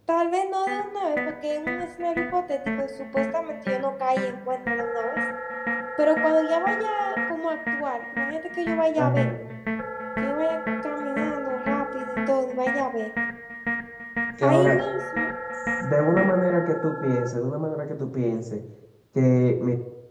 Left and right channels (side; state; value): both; identical; correlation 1.00